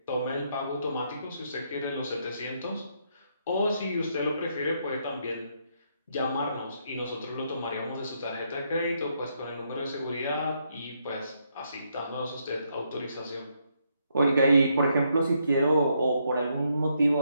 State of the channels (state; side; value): inverted; both; correlation -0.76